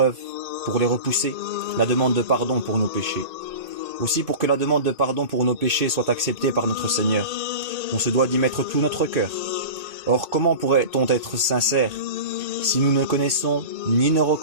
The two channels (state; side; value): late; left; 2.3 ms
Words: pour les repousser, la demande de pardon pour nos péchés. Aussi pour que la demande de pardon pour nos péchés soit acceptée par notre Seigneur, on se doit d'y mettre tout notre cœur. Or, comment pourrait-on être sincère si nous ne connaissons ni ne